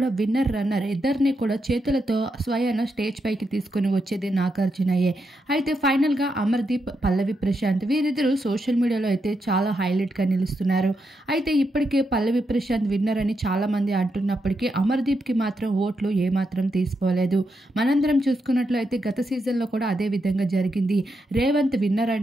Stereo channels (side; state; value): both; normal; correlation 0.83